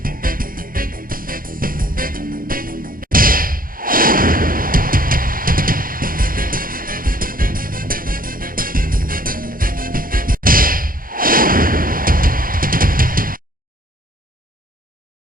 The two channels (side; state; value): left; late; 0.41 ms